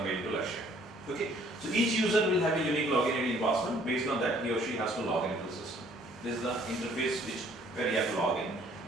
made to Lakshya. Okay, so each user will have a unique login ID and password. Based on that, he or she has to log into the system. This is the interface where you have to log in.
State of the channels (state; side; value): normal; both; correlation 0.60